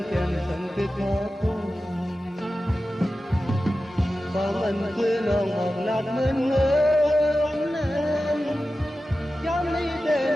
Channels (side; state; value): both; normal; correlation 0.94